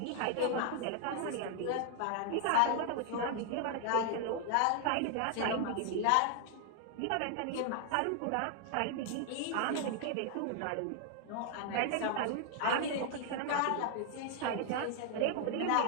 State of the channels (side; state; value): both; different; correlation 0.00